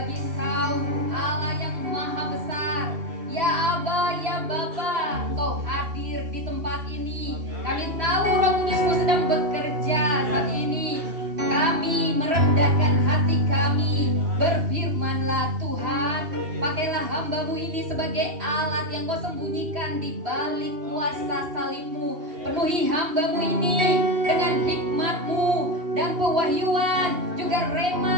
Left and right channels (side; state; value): left; late; 2.8 ms